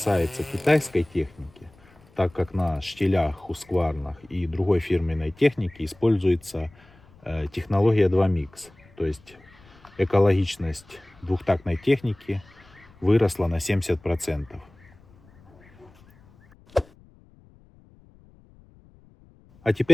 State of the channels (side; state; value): left; noise; rumble, 28 dB below the sound